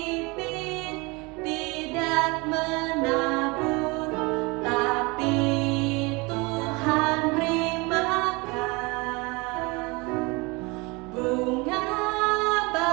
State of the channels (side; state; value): left; quieter; 26.4 dB